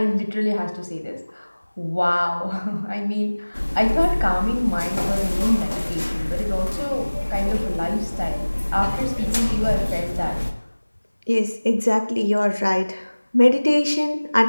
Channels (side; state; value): both; inverted; correlation -1.00